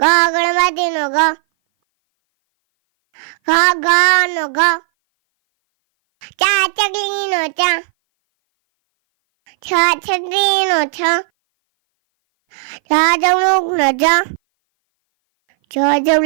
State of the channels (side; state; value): left; silent; 58 dB below the other